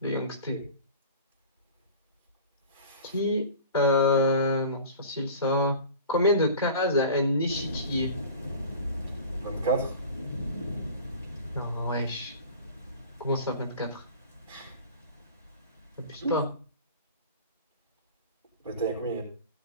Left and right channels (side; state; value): both; inverted; correlation -0.39